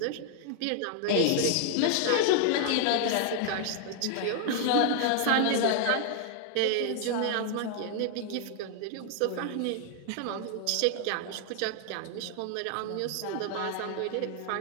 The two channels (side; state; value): both; different; correlation 0.00